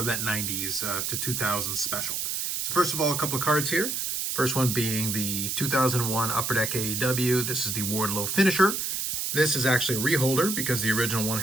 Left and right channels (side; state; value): right; noise; hiss, 1 dB below the sound